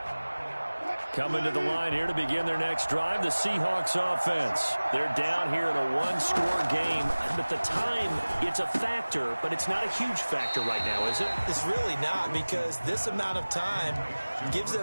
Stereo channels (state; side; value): inverted; both; correlation -1.00